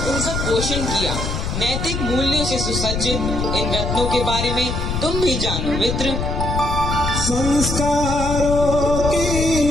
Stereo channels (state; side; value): noise; left; rumble, 2 dB below the sound